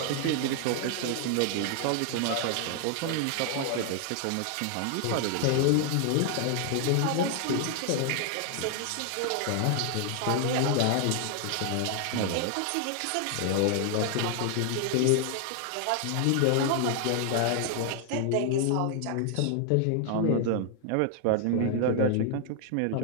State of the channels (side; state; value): both; different; correlation 0.00